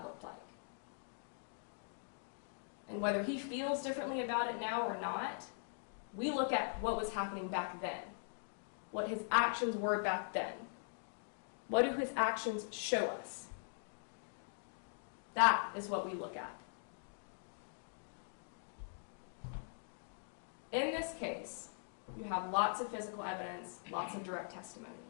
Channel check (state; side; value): silent; right; digital silence